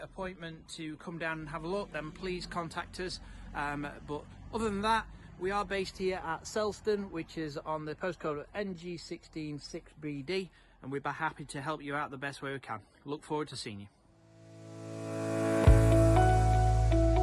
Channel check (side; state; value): both; identical; correlation 1.00